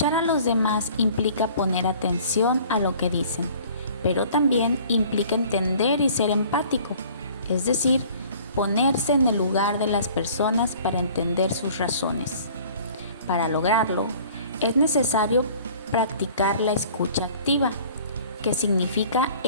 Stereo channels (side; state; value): both; inverted; correlation -0.50